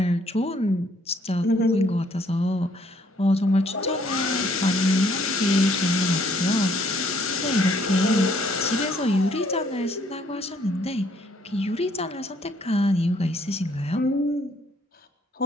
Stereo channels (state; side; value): normal; both; correlation 0.65